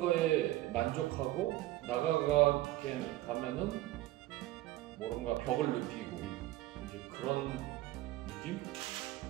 만족하고 나가게 가면은 뭔가 벽을 느끼고 이제 그런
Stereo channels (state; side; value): quieter; left; 16.6 dB